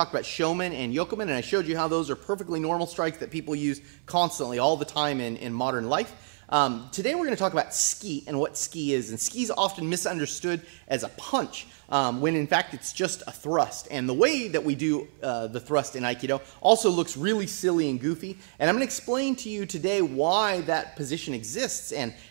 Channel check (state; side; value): silent; left; 59 dB below the other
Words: about shomen and yokomen, and I showed you how those are perfectly normal strikes that people use constantly, all the time in modern life. Today we're going to talk about ski and what ski is. And ski is often misunderstood as a punch, when in fact it's just a thrust. And the way that we do the thrust in Aikido also looks really silly and goofy. And I'm going to explain to you today why that position exists and